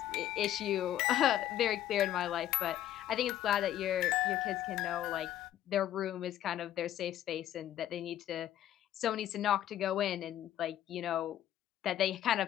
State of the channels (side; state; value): right; quieter; 12.1 dB